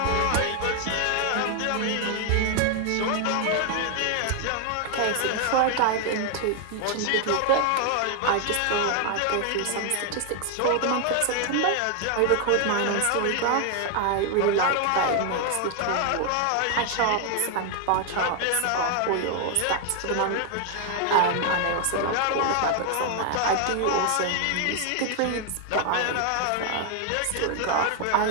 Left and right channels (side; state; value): both; different; correlation 0.00